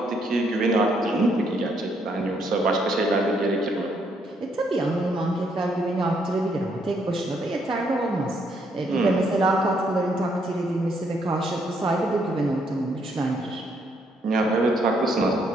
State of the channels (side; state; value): both; normal; correlation 0.72